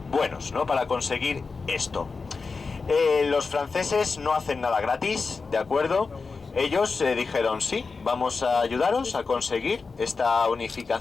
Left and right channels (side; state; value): right; quieter; 4.5 dB